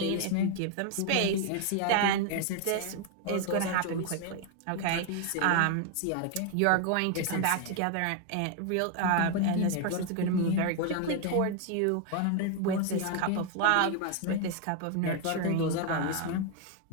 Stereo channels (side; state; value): both; different; correlation 0.01